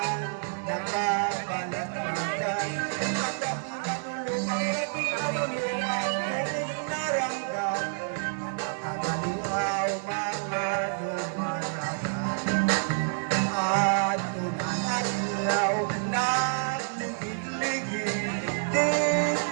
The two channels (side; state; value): left; silent; digital silence